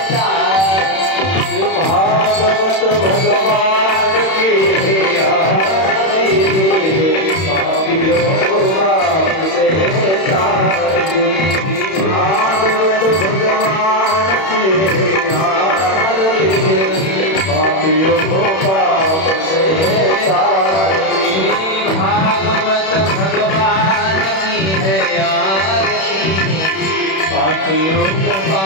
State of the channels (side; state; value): right; late; 31 ms